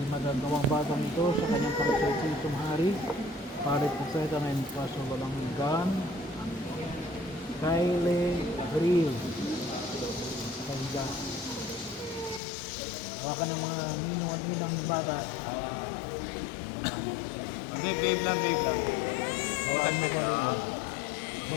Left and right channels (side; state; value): right; drops out; at 12.4 s